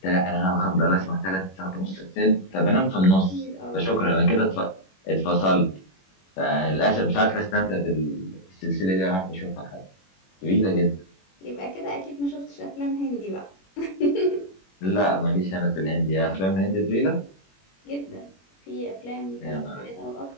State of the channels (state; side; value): late; right; 21 ms